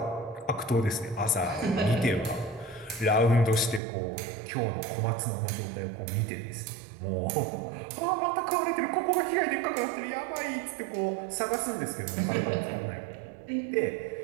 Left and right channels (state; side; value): drops out; left; at 3.8 s